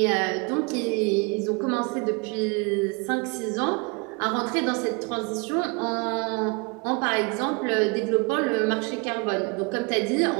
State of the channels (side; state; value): left; quieter; 30.4 dB